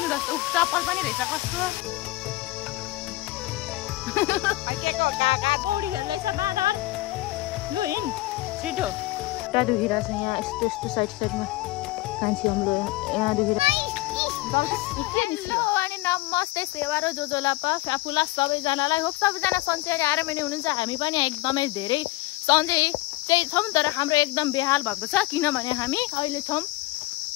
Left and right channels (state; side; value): quieter; right; 19.2 dB